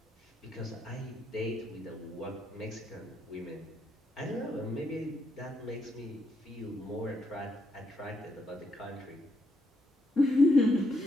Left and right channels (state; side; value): normal; both; correlation 0.77